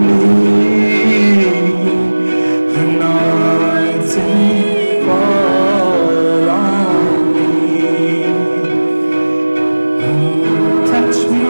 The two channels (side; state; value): both; inverted; correlation -1.00